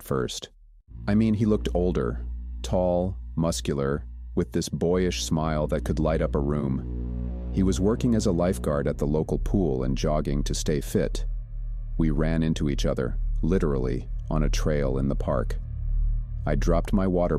first. I mean, he looked older, tall, muscular, with this boyish smile that could light up a room. He was working as a lifeguard at the local pool and jogging to stay fit. We ran into each other, literally, on a trail in the park. I dropped my water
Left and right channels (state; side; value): identical; both; correlation 1.00